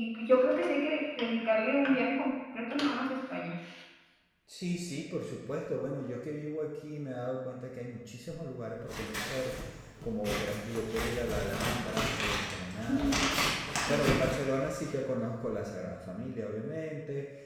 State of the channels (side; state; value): both; identical; correlation 1.00